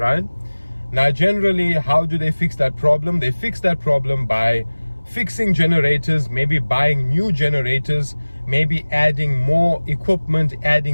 Now, generally, how do they fix that problem? They fix that problem by fixing generators, maybe buying new generators, maybe adding more equipment,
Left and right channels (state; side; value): inverted; both; correlation -1.00